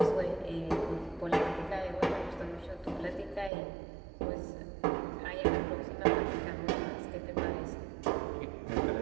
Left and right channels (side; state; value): left; drops out; at 3.5 s